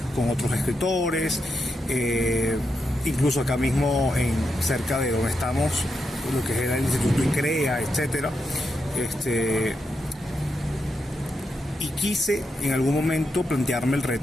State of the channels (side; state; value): both; normal; correlation 0.84